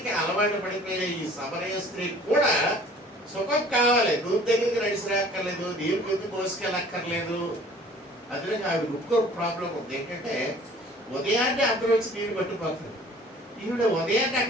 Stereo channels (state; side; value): normal; both; correlation 0.51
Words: అలవాటు పడిపోయిన ఈ సమరయ స్త్రీ కూడా సుఖం కావాలి, నూనె దగ్గరికి నడిచి రాక్కర్లేదు, నీరు పొద్దు మోసుకెళ్ళక్కర్లేదు. అందులో ఆవిడ ఇంకో ప్రాబ్లం ఉంది, ఏంటంటే ఉదయాన్నే అందరూ వచ్చి నీరు పట్టుకుపోతుంది, ఈవిడ ఉదయాన్నే